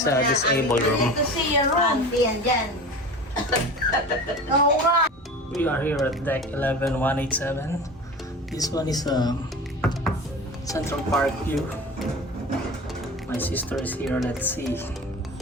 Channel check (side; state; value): both; normal; correlation 0.34